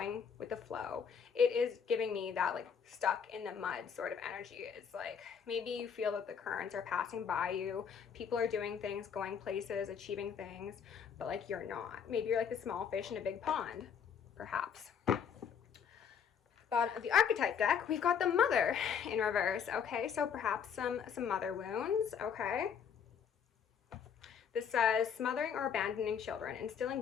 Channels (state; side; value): quieter; right; 7.3 dB